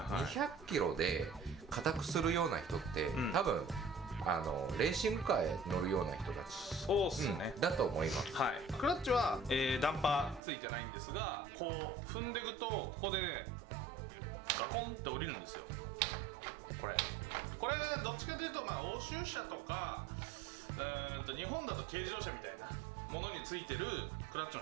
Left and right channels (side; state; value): left; drops out; at 10.4 s